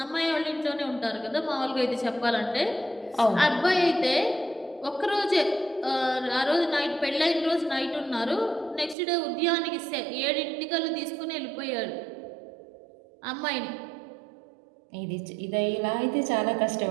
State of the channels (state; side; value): drops out; left; at 9.0 s